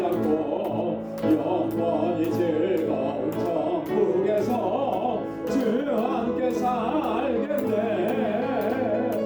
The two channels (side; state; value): both; identical; correlation 1.00